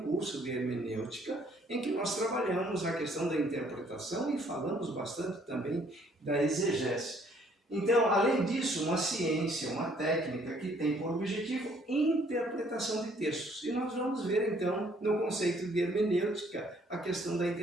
curso de hermenêutica em que nós trabalhamos a questão da interpretação e falamos bastante também da exegese. Então, além disso, uma ciência, uma técnica que tem por objetivo interpretação de textos. E nós vamos ver, então, no conceito de hermenêutica, a questão da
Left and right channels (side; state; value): both; normal; correlation 0.63